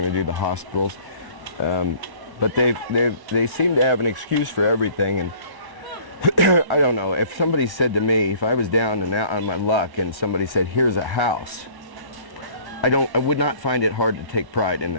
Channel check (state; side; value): late; left; 1.1 ms